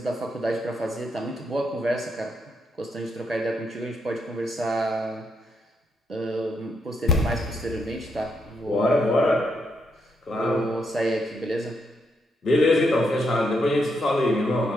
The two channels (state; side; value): normal; both; correlation 0.79